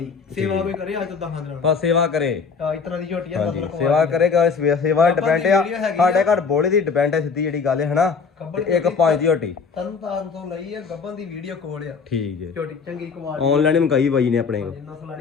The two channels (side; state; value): right; quieter; 5.4 dB